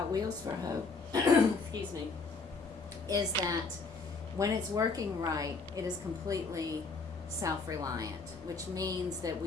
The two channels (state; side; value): quieter; right; 4.2 dB